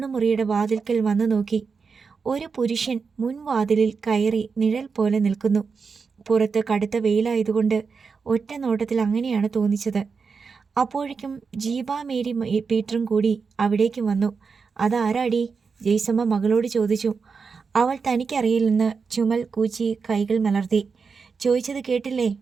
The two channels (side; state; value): left; quieter; 5.2 dB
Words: വാതിൽക്കൽ വന്നു നോക്കി. ഒരു പുരുഷൻ മുൻവാതിലിൽ കയറി നിഴൽ പോലെ നിൽക്കുന്നു. പുറത്ത് കടുത്ത വെയിലായതുകൊണ്ട് ഒറ്റ നോട്ടത്തിൽ അങ്ങനെയാണ് തോന്നിച്ചത്. അപ്പോഴേക്കും ജീബ മേരി പീറ്ററും കൂടി അവിടേക്ക് വന്നു. അതാരാടി? ജെയ്സമ്മ മകളോട് ചോദിച്ചു. അവൾ തനിക്കറിയില്ലെന്ന് ചുമൽ കൂച്ചി കൈകൾ മലർത്തി. ചോദിച്ചത് കേട്ടില്ലേ